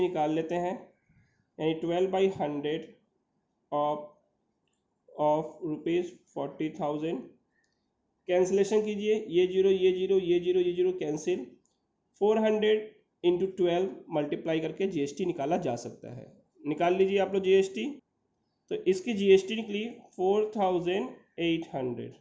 निकाल लेते हैं, यानी 12/100 ऑफ रुपीज़ 40,000। कैंसिलेशन कीजिए, ये जीरो ये जीरो ये जीरो ये जीरो कैंसिल, 400 इंटू 12 मल्टीप्लाई करके जीएसटी निकाला जा सकता है। निकाल लीजिए आप लोग जीएसटी। तो इसकी जीएसटी निकली 4,800,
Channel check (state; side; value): identical; both; correlation 1.00